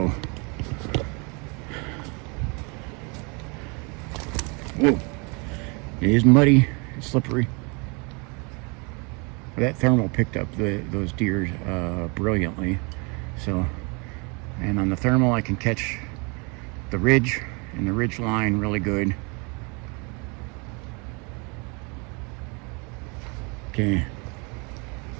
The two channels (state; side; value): quieter; left; 31.5 dB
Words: Whoa. It is muddy, it's slippery. But that thermal picked up those deer brilliantly. So, and on the thermal I can catch the ridge and the ridge line really good. Okay.